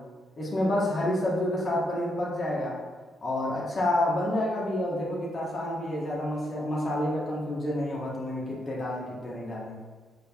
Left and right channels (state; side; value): normal; both; correlation 0.78